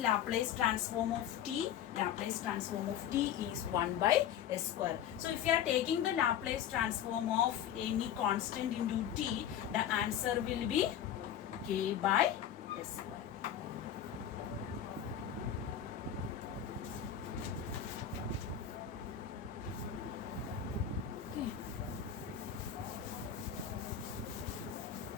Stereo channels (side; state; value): right; quieter; 9.6 dB